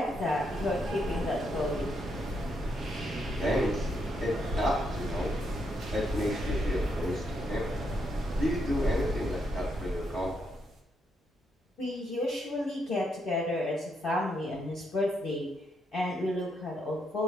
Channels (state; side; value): normal; both; correlation 0.78